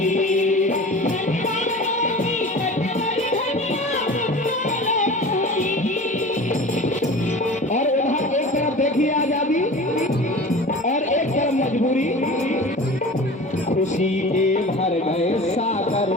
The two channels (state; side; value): normal; both; correlation 0.37